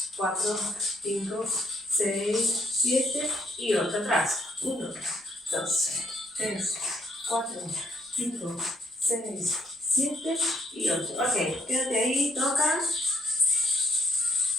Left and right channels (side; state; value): both; normal; correlation 0.70